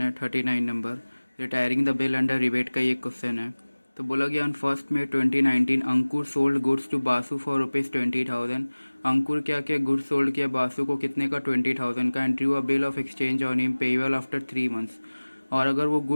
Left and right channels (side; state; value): both; inverted; correlation -1.00